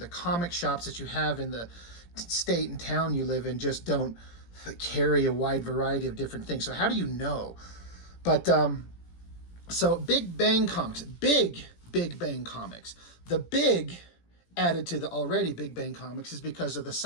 comic shops that you have in the state and town you live in just don't carry a wide variety of different things. So how do you know? But so Big Bang Comics, Big Bang Comics. The big added to the already Big Bang Comics is because of the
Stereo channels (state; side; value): late; right; 17 ms